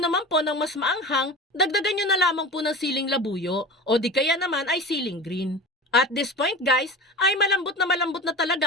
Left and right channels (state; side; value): normal; both; correlation 0.32